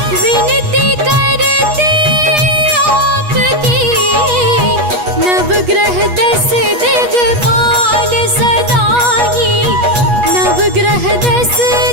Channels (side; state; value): left; late; 8.3 ms